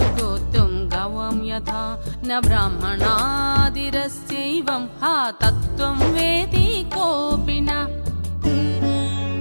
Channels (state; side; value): inverted; both; correlation -1.00